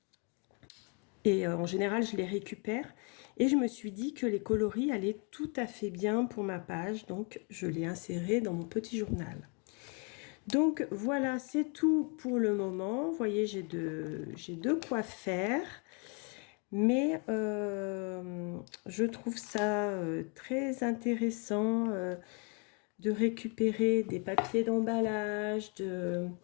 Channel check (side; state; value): right; quieter; 35.4 dB